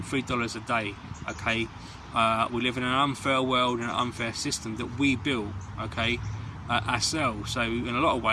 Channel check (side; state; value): both; identical; correlation 1.00